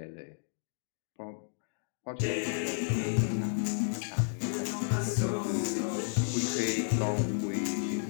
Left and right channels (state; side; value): silent; right; digital silence